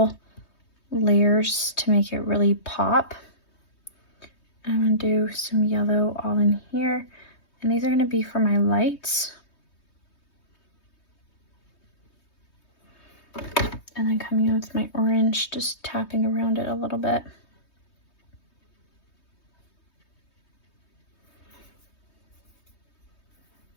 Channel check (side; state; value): right; late; 3.2 ms